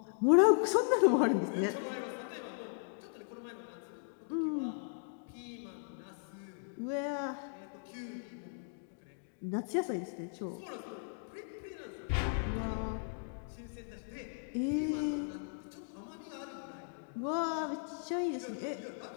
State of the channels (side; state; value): right; silent; digital silence